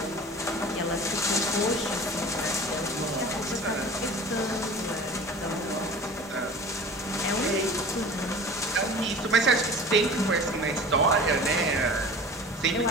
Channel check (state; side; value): normal; both; correlation 0.39